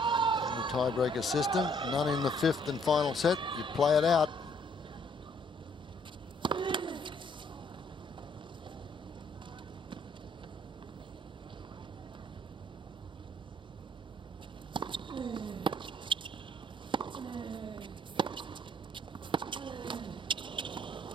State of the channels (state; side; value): normal; both; correlation 0.65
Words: the tiebreaker system. None in the 5th and final set. You play it out.